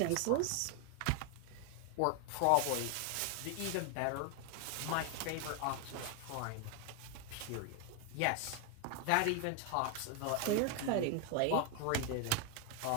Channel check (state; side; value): different; both; correlation 0.01